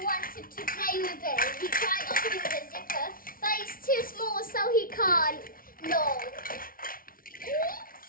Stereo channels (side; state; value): right; late; 0.42 ms